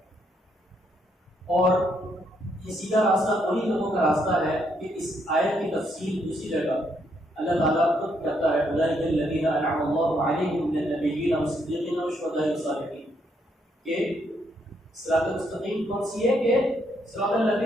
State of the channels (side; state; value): both; normal; correlation 0.74